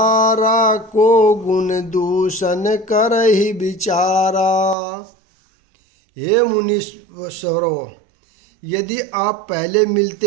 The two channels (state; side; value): drops out; left; at 4.8 s